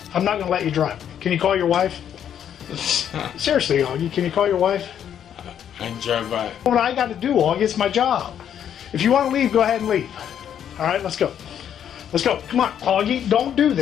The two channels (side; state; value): right; quieter; 9.3 dB